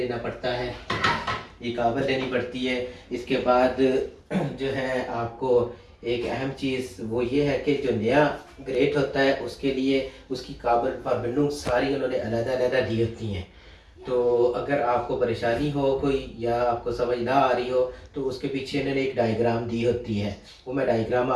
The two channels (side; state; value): both; identical; correlation 1.00